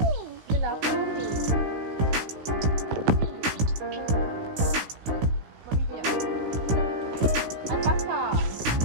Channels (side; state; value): left; late; 16 ms